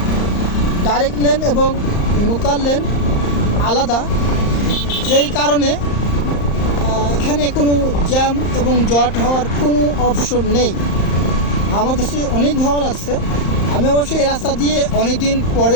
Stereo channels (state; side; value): late; right; 35 ms